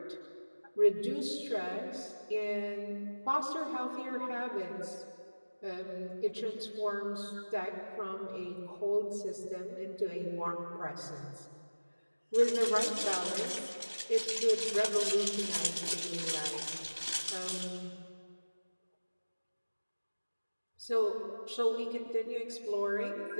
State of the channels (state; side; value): inverted; both; correlation -1.00